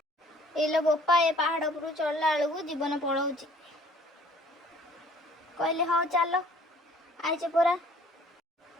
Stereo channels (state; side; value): normal; both; correlation 0.56